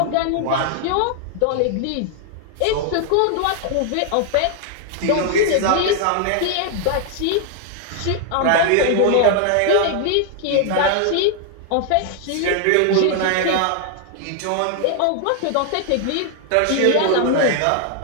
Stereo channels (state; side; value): different; both; correlation 0.00